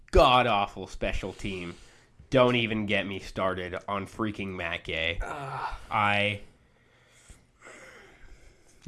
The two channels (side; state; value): both; identical; correlation 1.00